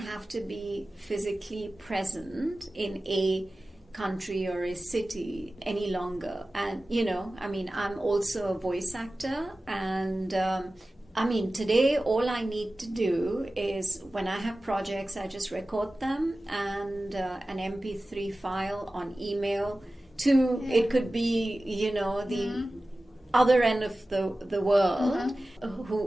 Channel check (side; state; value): both; normal; correlation 0.96